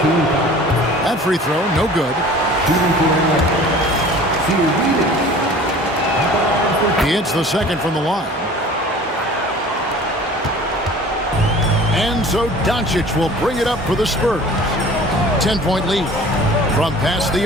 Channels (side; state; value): both; normal; correlation 0.45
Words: That free throw, no good. He hits the second from the line. And so Doncic will bring it up for the Spurs. 10-point lead from past the